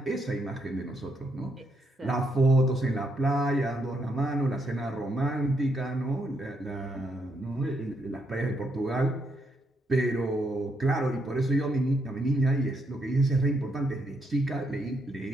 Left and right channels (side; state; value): both; normal; correlation 0.77